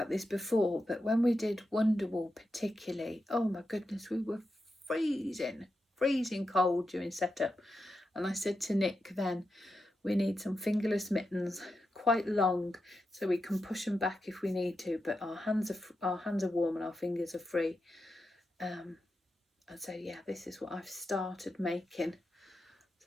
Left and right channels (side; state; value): both; normal; correlation 0.88